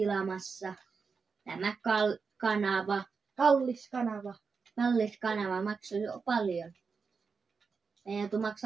tämä kanava. Kallis kanava. Kallis kanava maksaa jo paljon. Meidän joutuu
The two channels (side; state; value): left; quieter; 5.2 dB